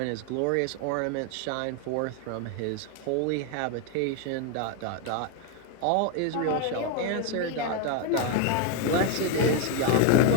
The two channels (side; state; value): both; different; correlation 0.01